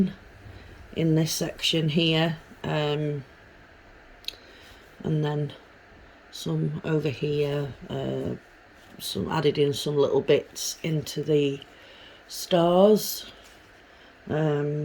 this section here, and then some over here, some added in some little bits into the stars.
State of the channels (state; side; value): identical; both; correlation 1.00